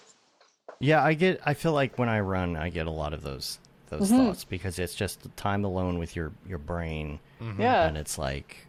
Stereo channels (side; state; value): both; identical; correlation 1.00